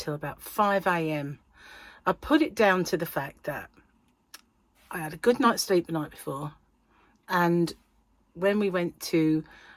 about 5 a.m. I put it down to the fact that I had a good night's sleep the night before, and when we went to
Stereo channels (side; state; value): both; identical; correlation 1.00